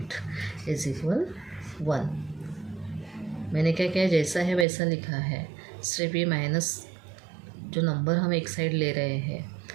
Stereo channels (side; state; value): left; drops out; at 4.7 s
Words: इज इक्वल 1। मैंने क्या किया, जैसा है वैसा लिखा है, सिर्फ ये माइनस जो नंबर हम एक साइड ले रहे हैं,